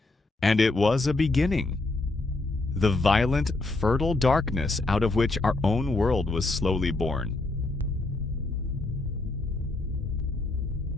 And it was a beginning. The violent, fertile darkness out of which our own world was slowly born.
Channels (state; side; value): quieter; right; 3.1 dB